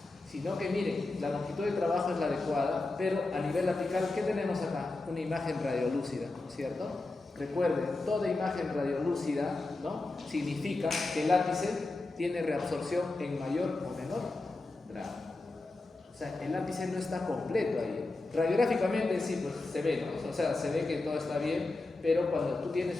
sino que miren, la longitud de trabajo es la adecuada, pero a nivel apical, ¿qué tenemos acá? Una imagen radiolúcida, ¿no es cierto? Recuerden, toda imagen radiolúcida, ¿no? Significa que el ápice tiene reabsorción en mayor o menor grado. O sea, el ápice no está completo ahí. Radiográficamente sí, pues se ve, ¿no? O sea, se ve que todo está bien, pero cuando tú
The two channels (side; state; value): right; quieter; 3.2 dB